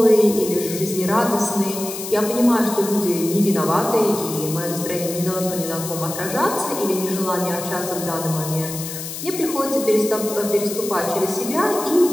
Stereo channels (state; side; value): noise; left; hiss, 8 dB below the sound